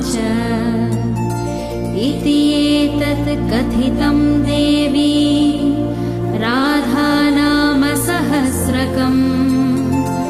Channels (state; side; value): identical; both; correlation 1.00